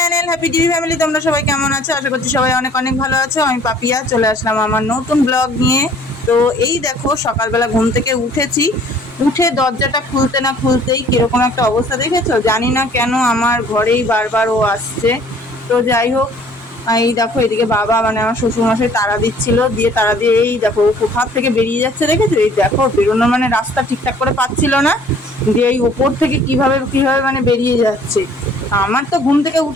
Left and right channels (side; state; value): both; normal; correlation 0.55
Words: happy TV family. তোমরা সবাই কেমন আছো? আশা করছি সবাই অনেক অনেক ভালো আছো। আমি পাপিয়া চলে আসলাম আমার নতুন ব্লগ নিয়ে। তো এই দেখো সকালবেলা ঘুম থেকে উঠেছি, উঠে দরজাটা খুলতে না খুলতেই কিরকম একটা অবস্থা দেখেছো? জানি না কেন আমার ঘরেই বারবার ও আসছে। তো যাই হোক, এই দেখো এদিকে বাবা মানে আমার শ্বশুরমশাই তাড়া দিচ্ছিল, দিয়ে তাড়া দিয়ে এই দেখো কোথার থেকে বেরিয়ে যাচ্ছে দেখেছো? এই দেখো বেরোনো মানে রাস্তা ঠিকঠাক করে পাচ্ছিল না, দিয়ে এই ওপর থেকে কিভাবে কিভাবে মানে বেরিয়ে যাচ্ছে। আমার তো ঘুম থেকে